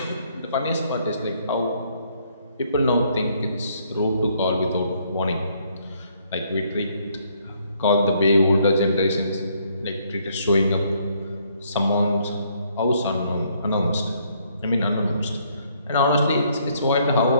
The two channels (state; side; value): inverted; both; correlation -0.68